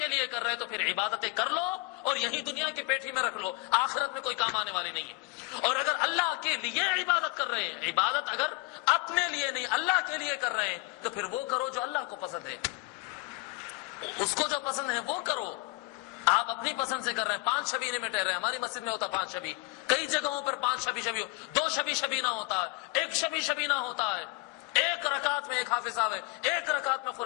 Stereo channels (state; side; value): quieter; right; 23.6 dB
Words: لیے کر رہے تو پھر عبادتیں کر لو اور یہی دنیا کی پیٹھی میں رکھ لو، آخرت میں کوئی کام آنے والی نہیں ہے۔ اور اگر اللہ کے لیے عبادت کر رہے ہیں، عبادت اگر اپنے لیے نہیں اللہ کے لیے کر رہے ہیں تو پھر وہ کرو جو اللہ کو پسند ہے، اس کو جو پسند ہے وہ کرو۔ آپ اپنی پسند سے کر رہے ہیں، 5 شبینے میں ٹہر رہے ہیں، ہماری مسجد میں ہوتا 5 شبی، کئی جگہوں پر 5 شبی 2 شبینہ ہوتا ہے، 1 شبینہ ہوتا ہے، 1 رکعت میں 1 حافظ صاحب ہے، 1 رکعت میں